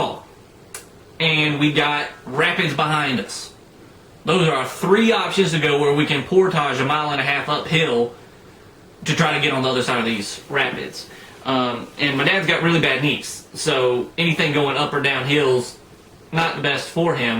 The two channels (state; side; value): identical; both; correlation 1.00